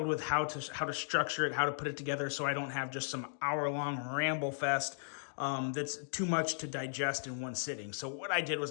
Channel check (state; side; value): silent; right; digital silence